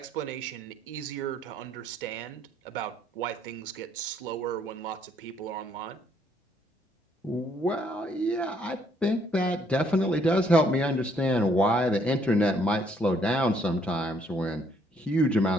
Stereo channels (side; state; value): both; normal; correlation 0.67